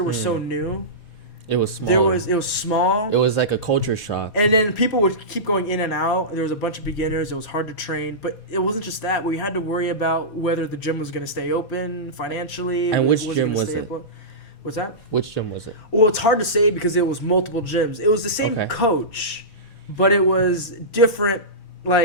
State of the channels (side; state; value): right; late; 4.2 ms